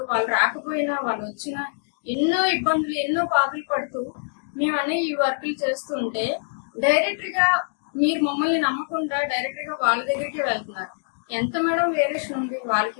వాళ్ళు రాకపోయినా వాళ్ళు వచ్చినా ఎన్నో ఇబ్బందులు, ఎన్నో బాధలు పడుతూ మేము అనే ఈ వర్కులు చేస్తూ ఉంటే డైరెక్ట్గా మీరు మమ్మల్ని నమ్మకుండా డైరెక్ట్గా వాళ్ళ దగ్గరికే వెళ్తున్నారు. ఎంత మేడం వేరియేషన్ ఉంది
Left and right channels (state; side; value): silent; right; digital silence